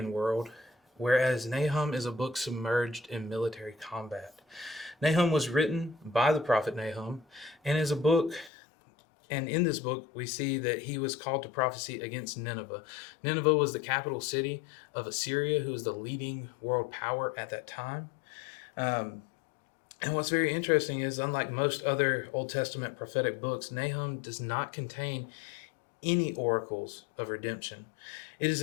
world, whereas Nahum is a book submerged in military combat. Nahum was written by the prophet Nahum and is a book, and in this book we see that he was called to prophecy against Nineveh. Nineveh was the capital city of Assyria, who was the leading world power at that time. And what's very interesting is, unlike most other Old Testament prophetic books, Nahum does not contain any oracles of redemption. It is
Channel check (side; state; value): right; drops out; at 8.5 s